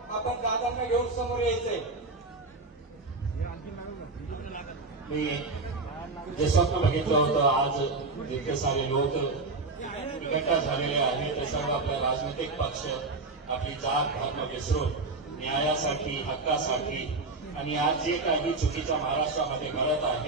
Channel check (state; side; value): quieter; left; 3.5 dB